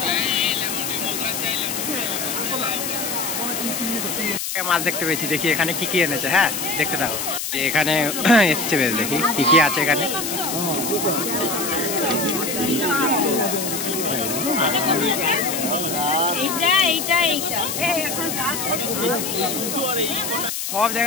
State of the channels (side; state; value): left; noise; hiss, 3 dB below the sound